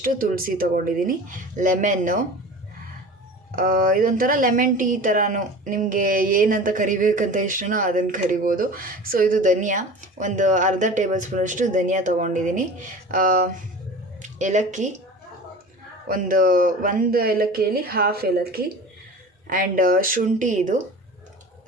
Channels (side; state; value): both; normal; correlation 0.37